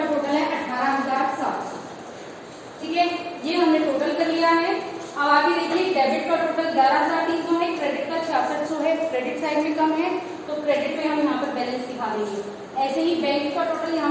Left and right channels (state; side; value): identical; both; correlation 1.00